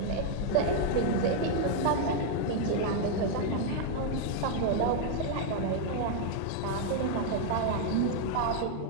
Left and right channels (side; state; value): both; different; correlation 0.00